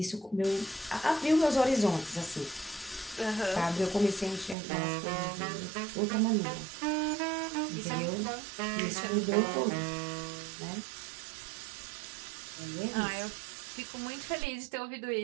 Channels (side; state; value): left; drops out; at 4.5 s